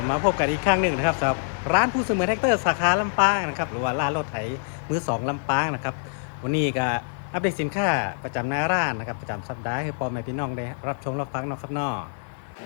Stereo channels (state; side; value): silent; right; digital silence